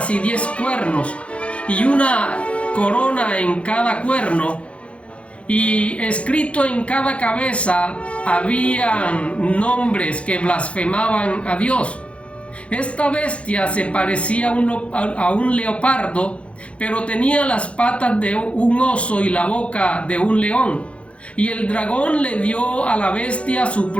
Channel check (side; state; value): right; late; 0.061 ms